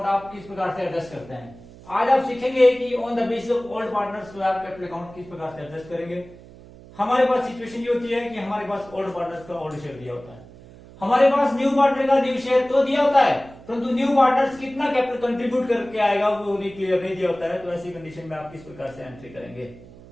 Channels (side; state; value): right; noise; hum, 20 dB below the sound